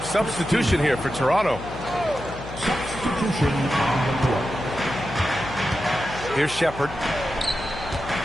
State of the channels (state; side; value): noise; left; hum, 12 dB below the sound